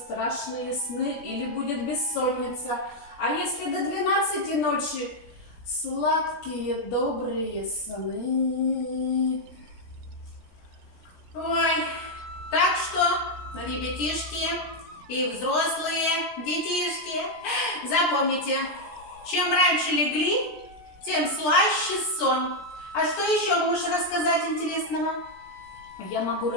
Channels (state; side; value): late; right; 17 ms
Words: сны или будет бессонница. А если до 12 ночи, сладкие добрые сны. Ой, так что, ребятишки и взрослые детишки, запомните, чем раньше легли, тем слаще сон. А что еще можешь рассказать интересного? Я могу